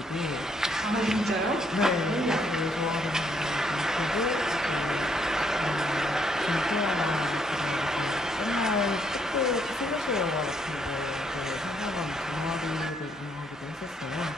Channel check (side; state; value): both; normal; correlation 0.72